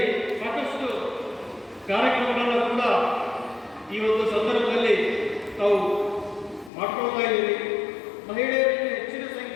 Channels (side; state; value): right; drops out; at 6.7 s